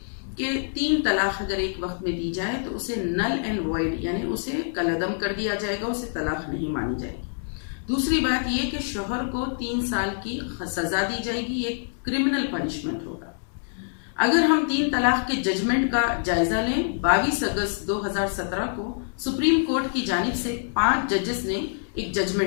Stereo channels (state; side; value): silent; right; digital silence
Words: कि 3 तलाक अगर एक वक्त में दी जाए तो उसे नल एंड वॉइड यानी उसे कलअदम कर दिया जाएगा, उसे तलाक नहीं मानी जाएगी। दूसरी बात ये कि शौहर को 3 साल की सजा दी जाएगी, ये क्रिमिनल पनिशमेंट होगा। अगर हम 3 तलाक के जजमेंट का जायजा लें, 22 अगस्त 2017 को सुप्रीम कोर्ट की जानिब से 5 जजेस ने एक